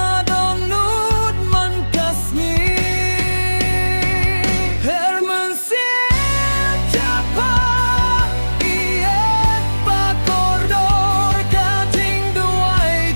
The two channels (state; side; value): inverted; both; correlation -1.00